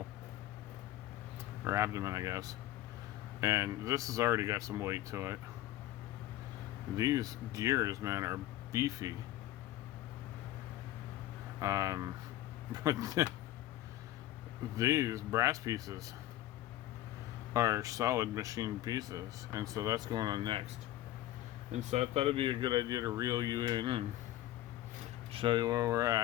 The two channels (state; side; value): quieter; right; 14.3 dB